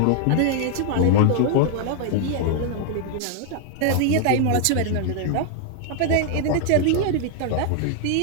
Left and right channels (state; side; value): different; both; correlation 0.00